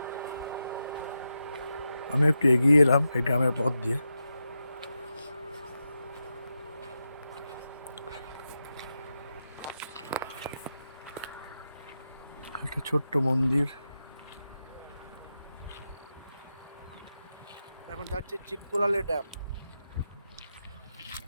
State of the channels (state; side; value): inverted; both; correlation -0.89